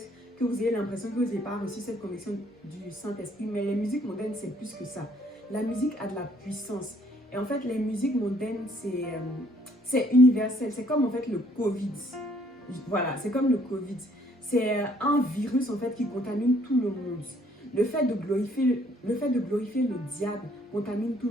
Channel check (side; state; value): both; normal; correlation 0.64